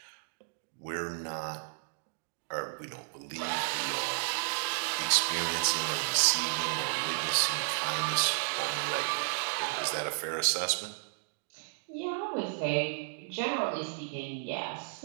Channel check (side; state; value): left; silent; digital silence